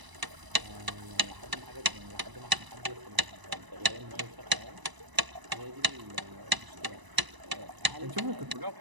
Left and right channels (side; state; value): left; late; 1.0 ms